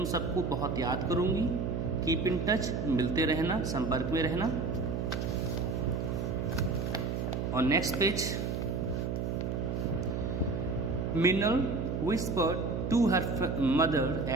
सबको बहुत याद करूंगी. Keep in touch. मिलते रहना, संपर्क में रहना. और next page, Minal whispered to her mother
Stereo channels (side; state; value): right; noise; hum, 1 dB below the sound